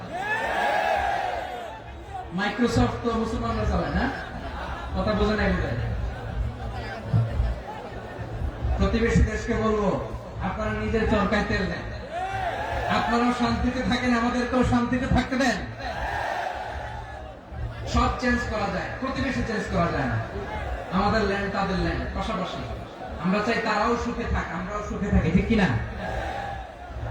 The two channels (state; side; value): identical; both; correlation 1.00